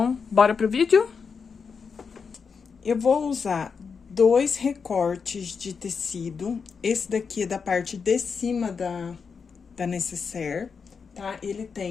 bora pro vídeo? Eu vou usar 2 recortes de tecido. Esse daqui é da parte de cima da necessaire, tá? Ele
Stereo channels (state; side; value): quieter; right; 5.7 dB